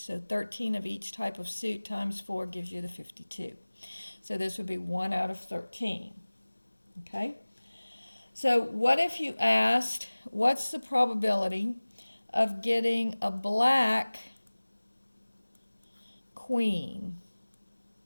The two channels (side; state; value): both; inverted; correlation -1.00